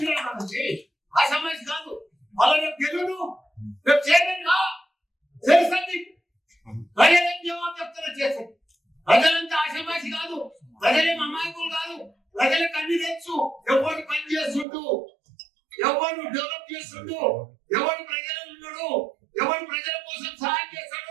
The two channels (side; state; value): left; drops out; at 14.7 s